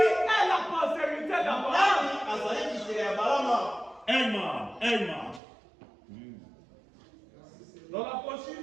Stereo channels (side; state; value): left; drops out; at 5.4 s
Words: la postérité d'Abraham? Dans la